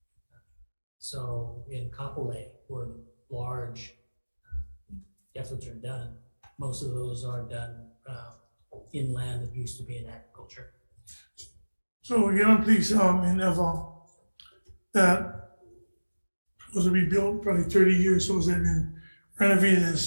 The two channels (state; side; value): inverted; both; correlation -1.00